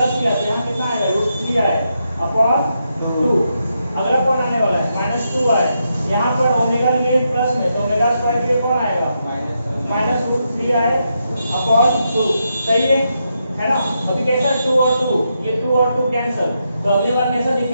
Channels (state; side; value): inverted; both; correlation -0.83